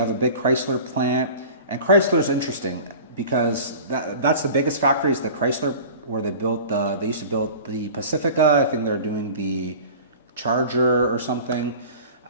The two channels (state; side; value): inverted; both; correlation -0.40